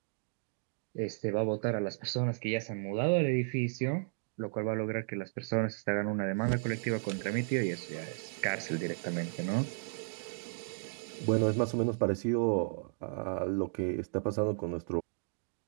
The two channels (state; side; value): silent; left; digital silence